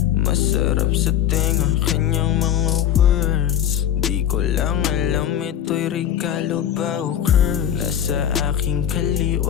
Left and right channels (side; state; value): right; quieter; 10.3 dB